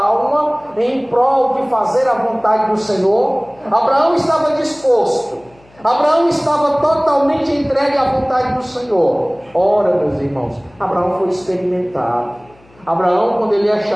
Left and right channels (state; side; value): noise; left; hum, 29 dB below the sound